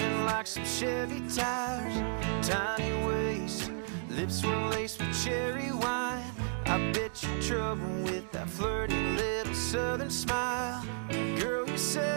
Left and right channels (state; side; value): silent; left; 56 dB below the other